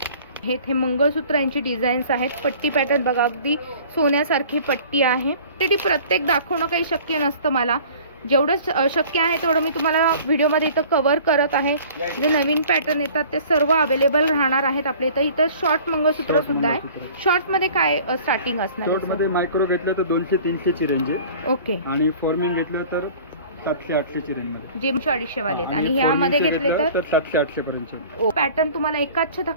हे मंगळसूत्रांची डिझाईन्स आहेत. पट्टी पॅटर्न बघा, अगदी सोन्यासारखी पट्टी आहे. ते प्रत्येक दाखवणं काही शक्य नसतं मला. जेवढं शक्य आहे तेवढं मी तुम्हाला व्हिडिओमध्ये इथं कव्हर करत आहे. जे नवीन पॅटर्न येतात ते सर्व अवेलेबल राहणार आहेत आपल्या इथं. इथं शॉर्ट मंगळसूत्र सुद्धा आहे. शॉर्ट मध्ये काय स्टार्टिंग असणार? शॉर्ट मध्ये मायक्रो घेतलं तर 200-300 ची रेंज आहे. ओके. आणि फॉर्मिंग घेतलं तर 700-800 ची रेंज मध्ये, जे 250 वाले. आणि ह्यामध्ये घेतले तर 700-800 पर्यंत. पॅटर्न तुम्हाला एकाच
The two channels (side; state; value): both; inverted; correlation -0.47